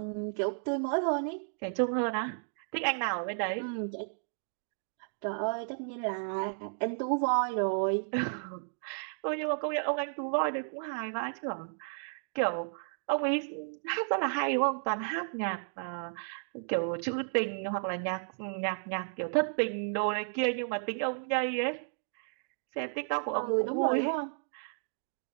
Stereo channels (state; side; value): silent; left; digital silence